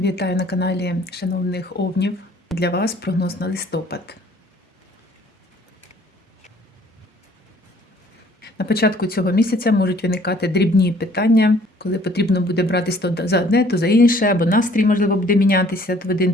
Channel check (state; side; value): normal; both; correlation 0.57